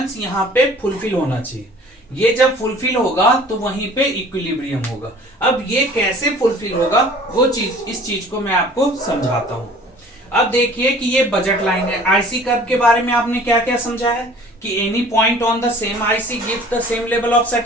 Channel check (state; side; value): normal; both; correlation 0.49